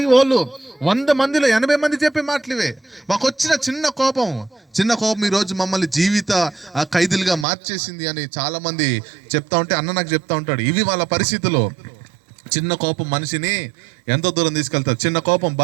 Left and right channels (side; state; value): left; drops out; at 7.5 s